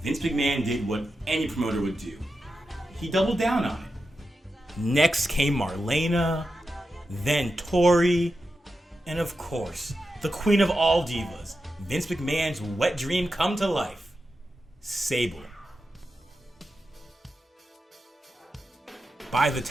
Vince McMahon did what any promoter would do. He doubled down on it. Next came Marlena, then Tori, and of course, the queen of all divas, Vince McMahon's wet dream come to life, Sable. By the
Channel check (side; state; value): both; normal; correlation 0.90